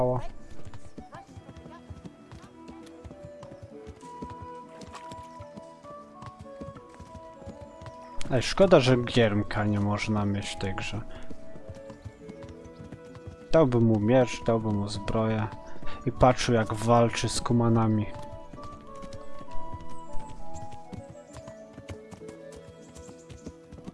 Ej, szkoda, że giermka nie można mieć w tej grze. Dałbym mu miecz, dałbym mu zbroję i patrzył, jak walczy z kumanami.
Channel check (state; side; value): identical; both; correlation 1.00